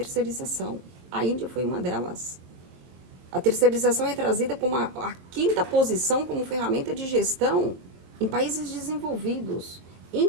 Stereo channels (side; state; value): left; late; 22 ms